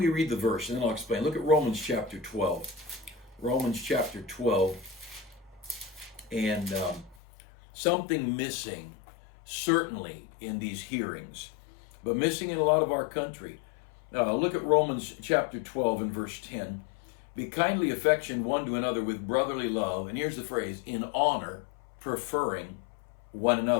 read the verse, and then I'll explain. Look at Romans chapter 12. Romans chapter 12, and something missing, certainly in these hearings, but missing in a lot of our country. Look at Romans chapter 12 and verse 10. Be kindly affectioned one to another with brotherly love, and here's the phrase, in honor, preferring one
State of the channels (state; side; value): drops out; right; at 7.2 s